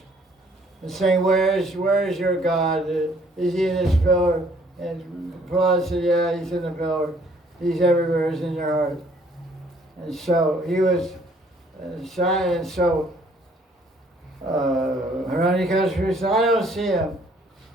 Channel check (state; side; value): normal; both; correlation 0.61